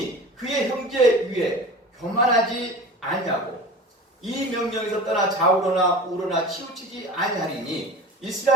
그의 형제 위에 교만하지 아니하고 이 명령에서 떠나 좌우로나 우로나 치우치지 아니하리니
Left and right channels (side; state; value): both; normal; correlation 0.37